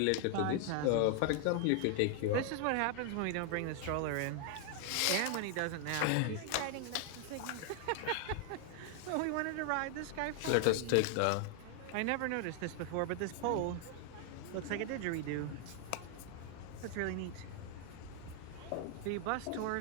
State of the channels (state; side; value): different; both; correlation 0.00